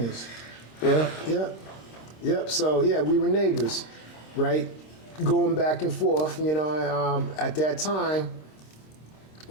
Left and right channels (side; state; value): right; late; 26 ms